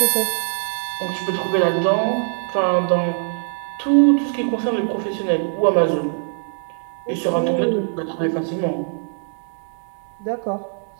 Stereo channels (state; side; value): silent; left; 56 dB below the other